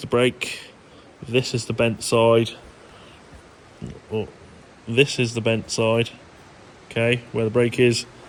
brake, this is the bent side, oh, this is the bent side, okay, where the brake is,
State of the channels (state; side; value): identical; both; correlation 1.00